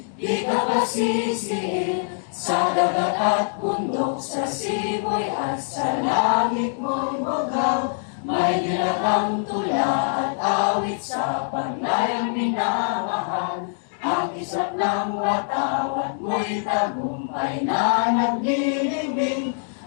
di ka pasisir, sa dagat at bundok, sa siboy at sa langit mo'y bugaw. May nilatang tula at awit sa paglayang minamahal. Ang isang ng watawat mo'y tagumpay na naglilibing.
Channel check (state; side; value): silent; right; digital silence